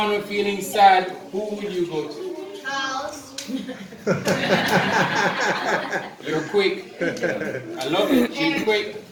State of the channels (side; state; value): both; identical; correlation 1.00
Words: or feeling sad, who would you go to? House. You're quick. I love it. You're quick.